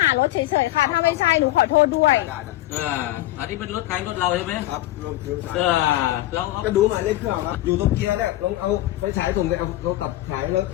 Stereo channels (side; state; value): right; quieter; 15.9 dB